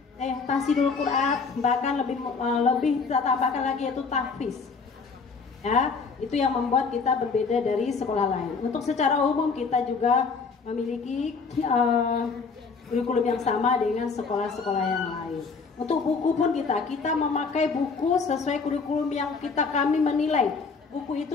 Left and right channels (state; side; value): quieter; right; 4.9 dB